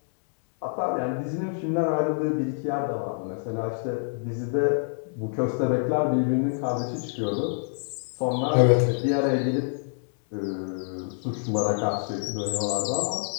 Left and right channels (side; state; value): right; silent; digital silence